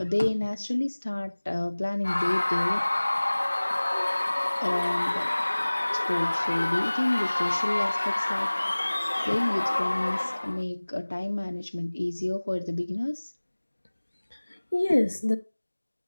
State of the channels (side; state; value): both; inverted; correlation -1.00